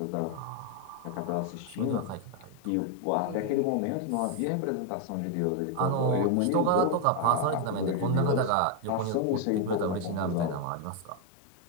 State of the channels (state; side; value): different; both; correlation 0.01